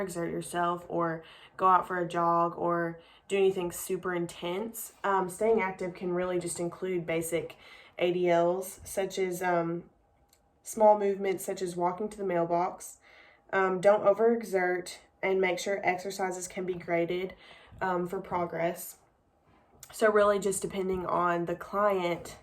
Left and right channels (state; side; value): identical; both; correlation 1.00